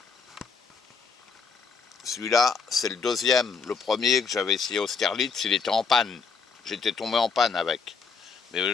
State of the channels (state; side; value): quieter; right; 5.3 dB